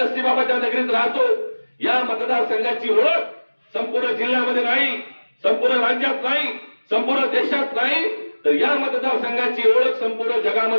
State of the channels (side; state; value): both; inverted; correlation -1.00